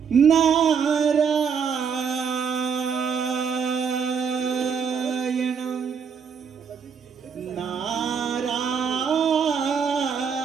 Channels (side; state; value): left; quieter; 6.5 dB